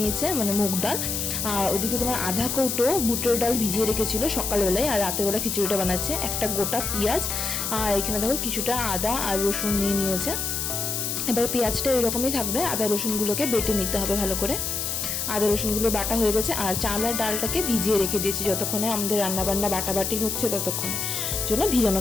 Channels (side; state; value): left; noise; hiss, 2 dB below the sound